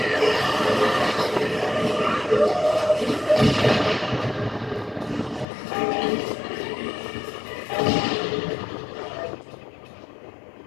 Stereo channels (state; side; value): drops out; right; at 5.5 s